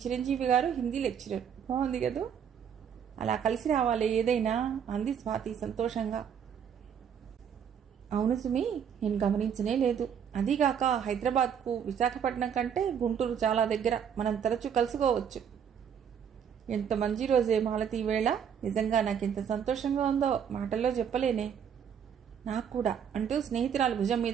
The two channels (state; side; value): quieter; left; 8.0 dB